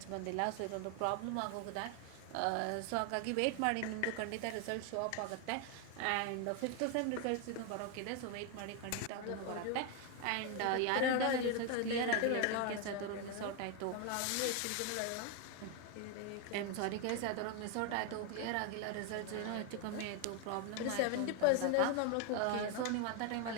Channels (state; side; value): different; both; correlation 0.01